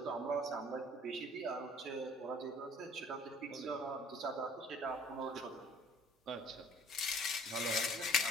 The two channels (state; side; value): normal; both; correlation 0.54